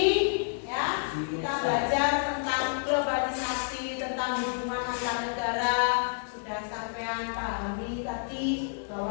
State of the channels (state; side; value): silent; right; digital silence